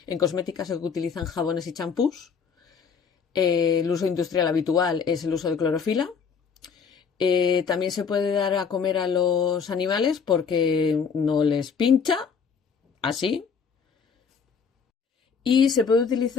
En cosmética se utilizan jabones y champús. El uso industrial habitual es el uso de clorofila. También se puede dar a comer a los animales porque no les pincha, así. Y se puede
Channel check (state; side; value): quieter; right; 6.1 dB